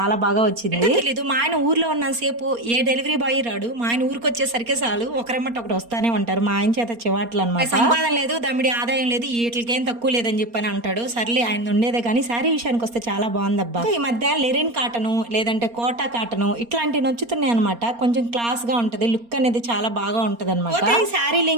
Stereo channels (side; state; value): left; late; 4.3 ms